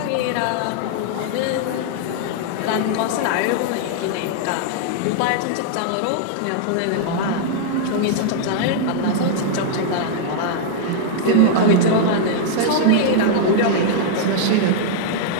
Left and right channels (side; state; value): both; different; correlation -0.01